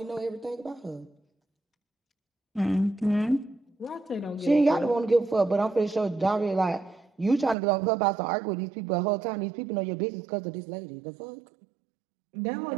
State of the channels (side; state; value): left; drops out; at 7.6 s